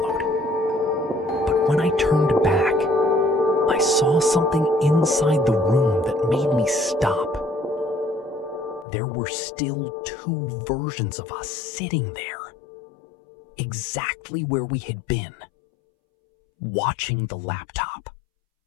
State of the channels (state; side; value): drops out; right; at 8.8 s